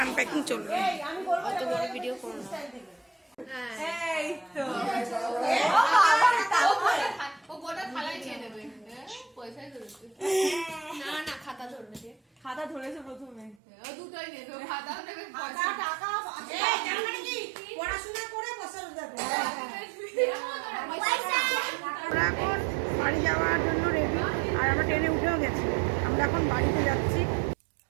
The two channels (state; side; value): drops out; left; at 13.6 s